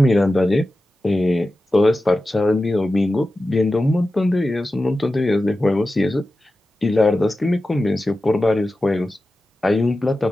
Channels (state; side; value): normal; both; correlation 0.94